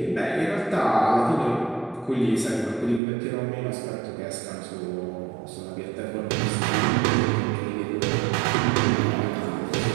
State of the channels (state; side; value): drops out; left; at 3.0 s